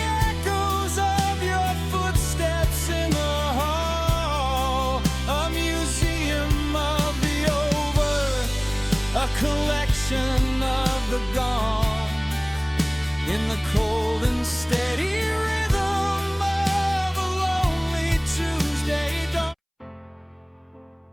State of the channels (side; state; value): both; identical; correlation 1.00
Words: echoes of your footsteps in the hall. A museum of the over, a collection of the gone, in the cold and steady rhythm of a lonely Tuesday dawn.